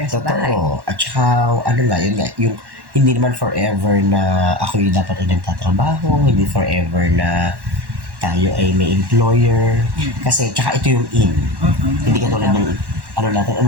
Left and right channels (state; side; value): late; left; 1.1 ms